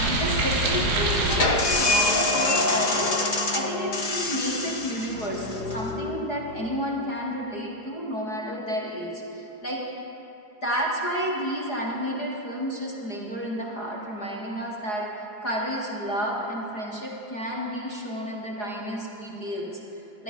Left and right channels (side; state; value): right; late; 4.8 ms